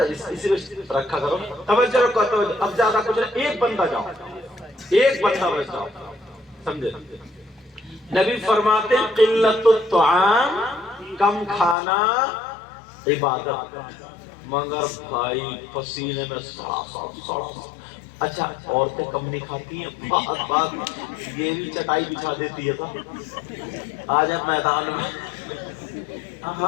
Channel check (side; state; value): right; drops out; at 11.8 s